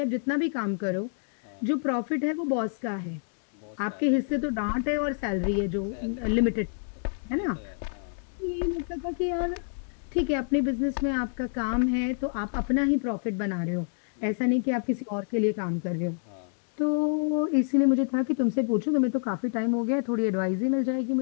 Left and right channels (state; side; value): silent; right; digital silence